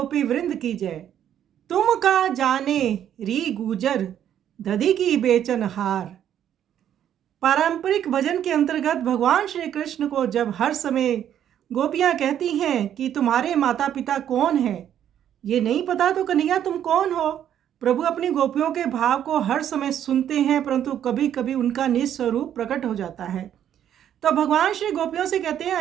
वृंद की जय। तुम का जाने री गुजर, दधी की बेचन हार। पारंपरिक भजन के अंतर्गत भगवान श्री कृष्ण को जब हर समय गोपियां कहती हैं कि तुम्हारे माता पिता कौन है, ये नहीं पता तो कन्हैया तुम कौन हो। प्रभु अपनी गोपियों के भाव को हर समय सुनते हैं, परंतु कभी कभी उनका निस्वरूप प्रकट हो जाता है। तो भगवान श्री गोपियों से कहते हैं,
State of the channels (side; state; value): left; quieter; 10.2 dB